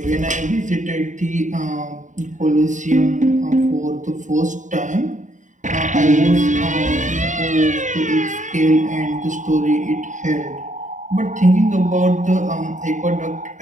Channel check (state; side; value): late; left; 0.36 ms